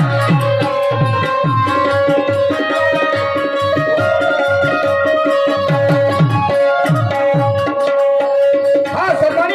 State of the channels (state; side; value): identical; both; correlation 1.00